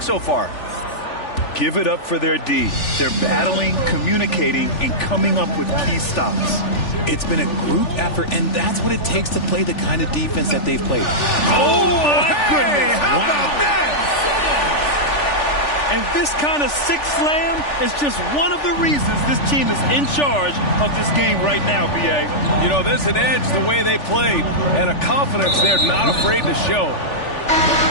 so far? Give it up for their D. They're battling, communicating, and coming up with key stops. It's been a group effort, and that's what it takes to play the kind of defense that they've played. Oh, my goodness. How about that? And this kind of six slam is just one of the reasons this team is in charge of this game right now, B.A. You know, there's an edge the way they played and a confidence they're not afraid to show.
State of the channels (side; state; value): right; late; 3.4 ms